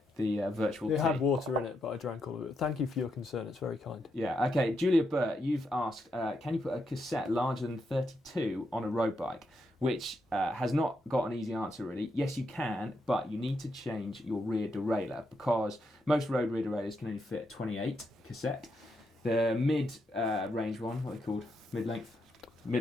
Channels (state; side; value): normal; both; correlation 0.81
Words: The virtual tea. It had water in it, but I drank all of it. Thank you for your concern, it's very kind. Yeah, okay. Julia Burt, you've asked, can you put a cassette larger than 32 on a road bike? Which has not got an easy answer, really. Yes, you can, but you need to change your rear derailleur because most road rear derailleurs can only fit 28 cassette. The mid-range one, what are they called? Mid-length?